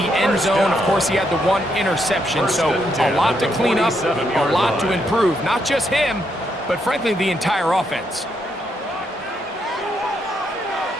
end zone, of course, he had the one interception. So a lot to clean up, a lot to improve. Not just him, but frankly, the entire offense.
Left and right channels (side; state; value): both; normal; correlation 0.77